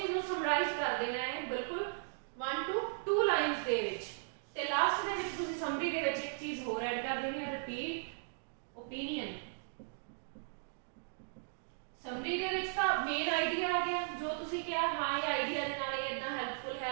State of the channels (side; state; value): left; silent; digital silence